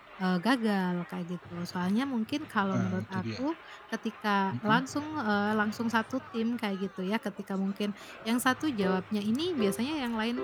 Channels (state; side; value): identical; both; correlation 1.00